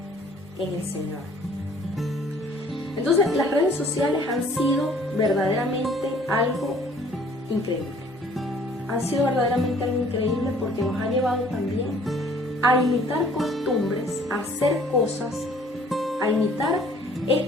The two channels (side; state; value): both; normal; correlation 0.56